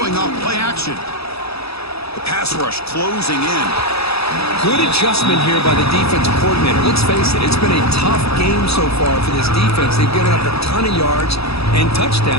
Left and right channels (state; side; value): late; right; 0.78 ms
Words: off play action. The pass rush closing in. Good adjustment here by the defensive coordinator. Let's face it, it's been a tough game so far for this defense. They've given up a ton of yards and